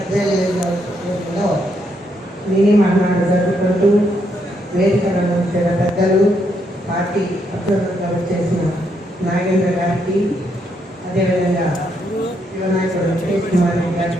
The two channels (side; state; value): both; normal; correlation 0.76